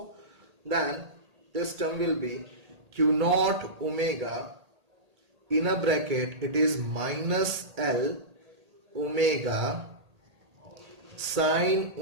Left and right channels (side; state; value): left; late; 1.8 ms